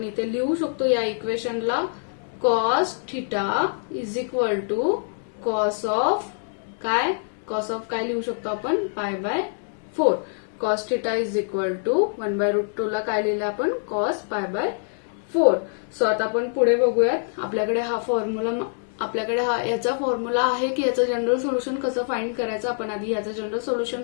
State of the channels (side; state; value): right; silent; digital silence